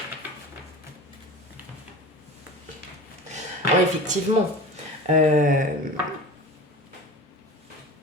alors, effectivement. Alors,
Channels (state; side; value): normal; both; correlation 0.35